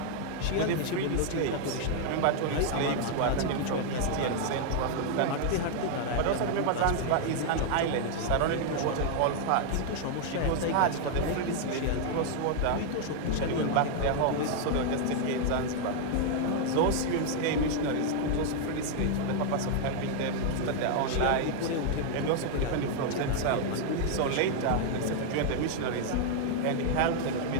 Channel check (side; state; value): both; different; correlation 0.00